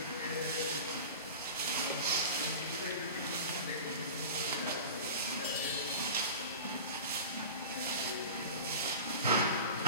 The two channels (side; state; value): both; inverted; correlation -0.33